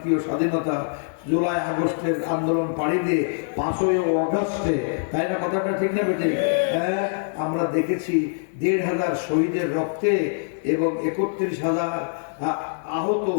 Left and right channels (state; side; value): silent; right; digital silence